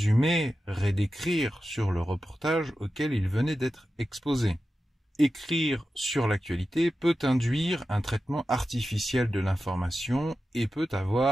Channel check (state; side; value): normal; both; correlation 0.92